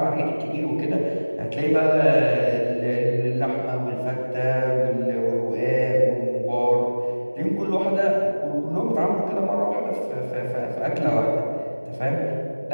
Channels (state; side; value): inverted; both; correlation -1.00